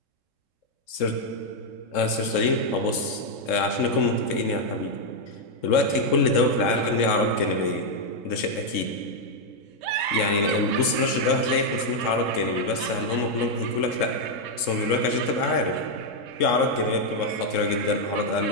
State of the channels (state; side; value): late; right; 3.7 ms